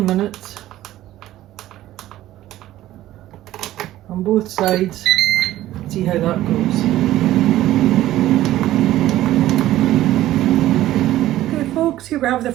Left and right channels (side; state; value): left; quieter; 14.4 dB